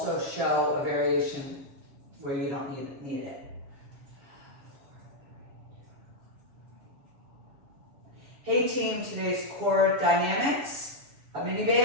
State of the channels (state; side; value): late; left; 7.2 ms